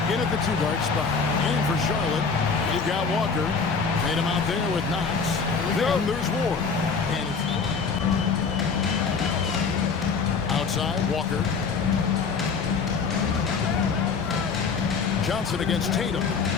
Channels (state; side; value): quieter; right; 5.2 dB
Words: in at the two-guard spot. And for Charlotte, you've got Walker. Tatum out there with Knox. Then there's Ward. And it's outside, Walker. Johnson against Tatum.